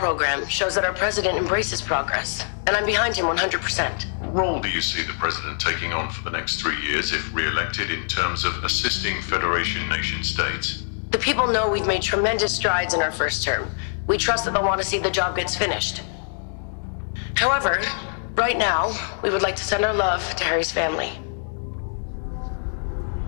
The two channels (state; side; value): silent; right; digital silence